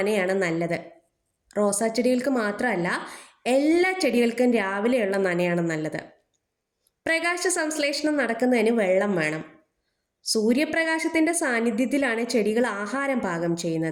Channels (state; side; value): identical; both; correlation 1.00